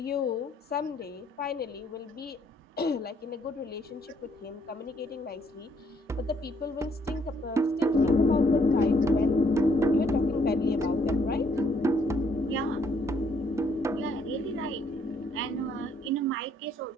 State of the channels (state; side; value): normal; both; correlation 0.68